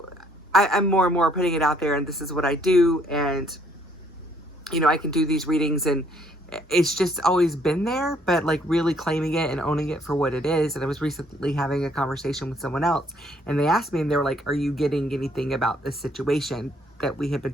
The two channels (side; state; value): both; normal; correlation 0.66